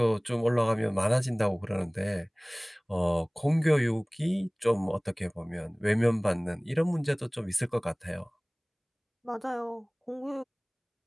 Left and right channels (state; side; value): identical; both; correlation 1.00